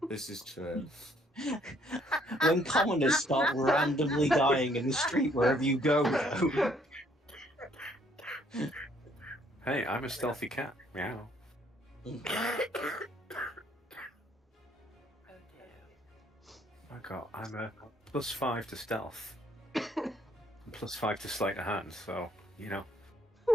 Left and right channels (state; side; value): normal; both; correlation 0.65